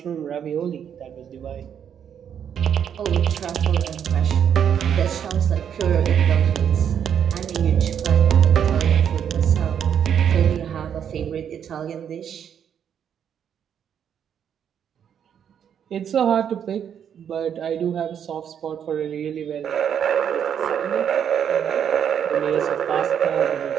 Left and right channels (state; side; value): quieter; left; 8.6 dB